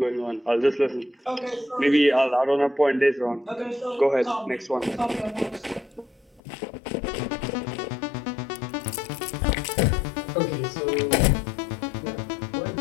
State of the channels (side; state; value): right; drops out; at 6.4 s